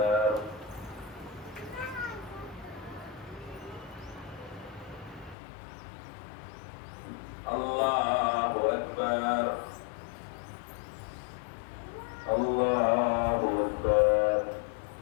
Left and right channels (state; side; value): drops out; right; at 5.4 s